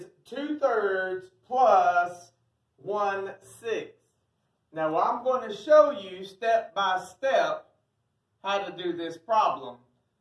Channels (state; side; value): identical; both; correlation 1.00